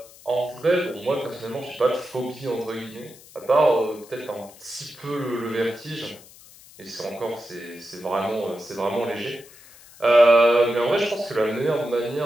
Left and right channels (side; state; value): left; noise; hiss, 22 dB below the sound